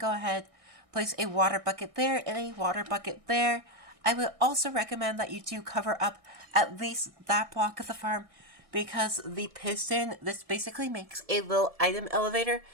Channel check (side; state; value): left; late; 1.6 ms